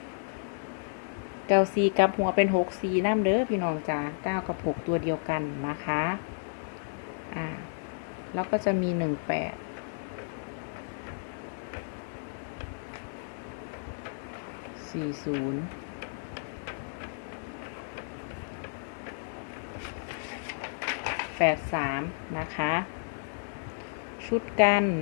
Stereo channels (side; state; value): right; silent; digital silence